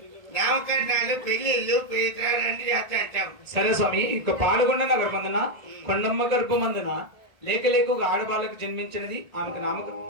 నామకరణాలు పెళ్లిళ్ళు పేదరాన్ని చేస్తాం. సరే స్వామి, ఇక పాల్గొండ నగర మందున కొండమ్మ గర్భమందున లేక లేక ఒక ఆడబాలకు జన్మించినది ఆమెకు నామక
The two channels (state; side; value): late; left; 1.7 ms